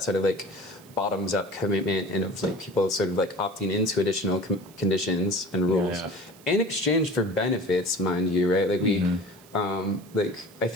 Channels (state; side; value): noise; right; hiss, 24 dB below the sound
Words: sort of like bottoms-up commitment and of like people sort of like opting into additional conditions and rules in exchange for benefits, mind you, right? Like like I